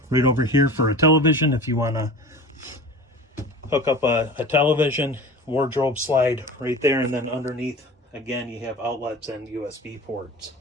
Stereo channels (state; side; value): normal; both; correlation 0.36